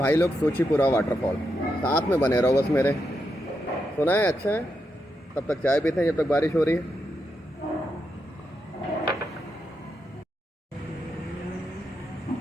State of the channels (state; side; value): normal; both; correlation 0.84